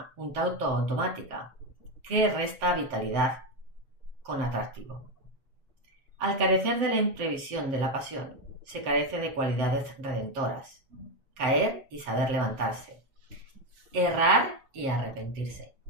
un tanto automática, que resta vitalidad con atractivo. Al carecer de la imprevisión de la pasión, se carece de cualidades redentoras. Caer y saber levantarse. Errar y arrepentirse.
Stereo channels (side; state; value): left; late; 7.6 ms